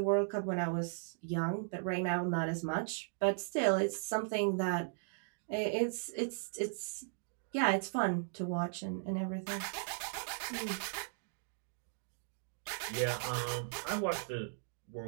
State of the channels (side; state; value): left; silent; digital silence